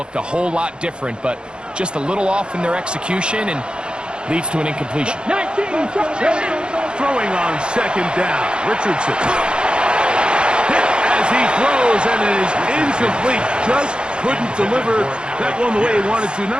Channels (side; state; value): left; late; 0.052 ms